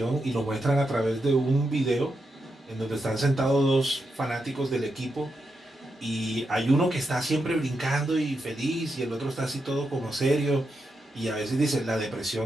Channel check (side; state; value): both; normal; correlation 0.85